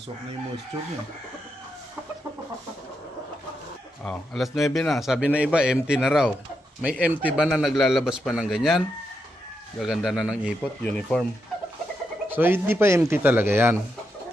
na yung moisture niya. Oh, alas 9 na. Sabi na iba, empty na raw. May empty ba na naglalabas pa ng ganyan? Gaganda na ng ipot, uniform. So, hindi pa empty talaga yan.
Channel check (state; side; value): normal; both; correlation 0.83